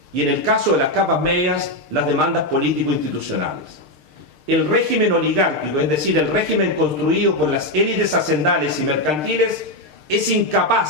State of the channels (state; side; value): late; left; 6.6 ms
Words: y en el caso de las capas medias, las demandas político-institucionales. El régimen oligárquico, es decir, el régimen construido por las élites hacendales y mercantiles, es